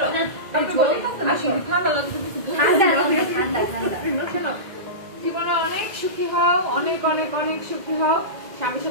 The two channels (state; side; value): late; left; 2.0 ms